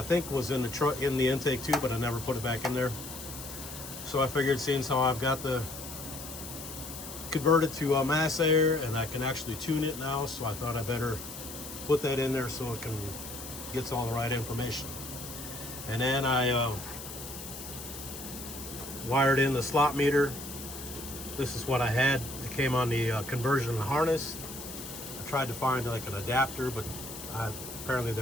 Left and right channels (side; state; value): left; noise; hiss, 11 dB below the sound